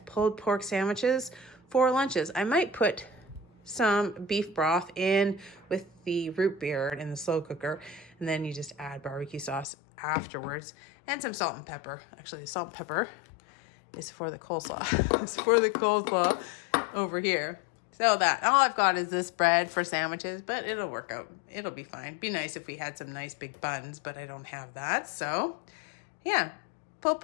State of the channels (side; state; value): right; drops out; at 9.7 s